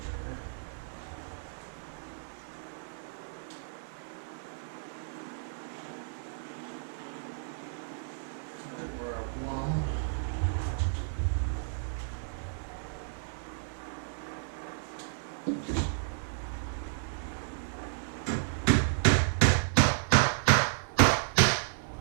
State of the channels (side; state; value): left; silent; 56 dB below the other